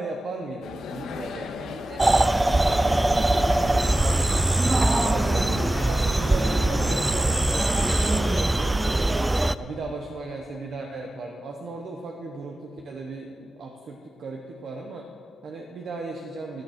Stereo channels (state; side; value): normal; both; correlation 0.95